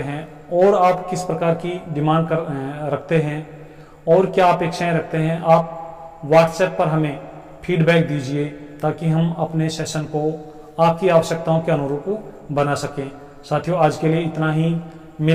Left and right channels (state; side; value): identical; both; correlation 1.00